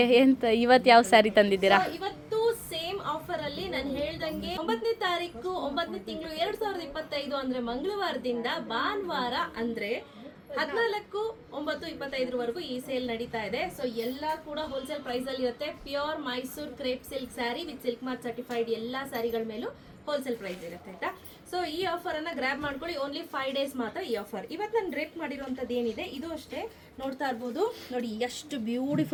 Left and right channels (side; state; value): both; identical; correlation 1.00